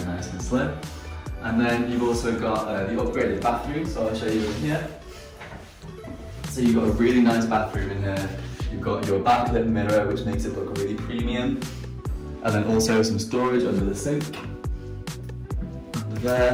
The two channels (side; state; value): both; identical; correlation 1.00